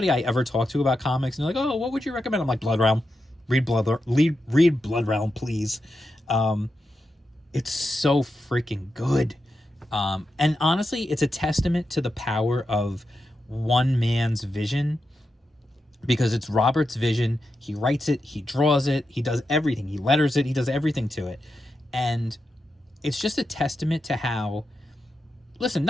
I ever talk to about comics, and they're like, oh, what would you recommend? I'm like, Blood Realm. Read Blood Realm, please. It's so freaking good. And honestly, it's a testament to the power of one man's vision, because it's Robert's vision. He writes it, he draws it, he does everything. He letters it, he does everything to it. And it's just a testament to how, listen,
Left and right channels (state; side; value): normal; both; correlation 0.88